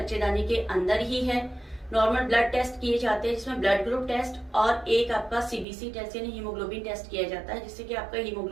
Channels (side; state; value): left; drops out; at 5.7 s